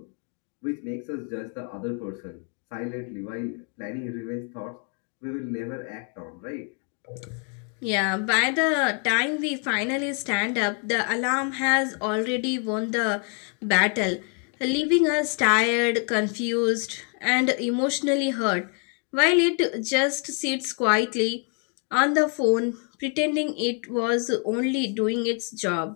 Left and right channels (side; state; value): right; quieter; 37.9 dB